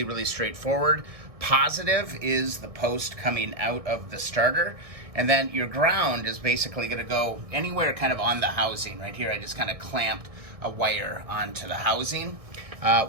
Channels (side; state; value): left; late; 1.6 ms